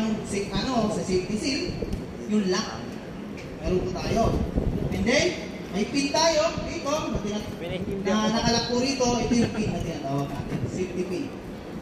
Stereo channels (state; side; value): identical; both; correlation 1.00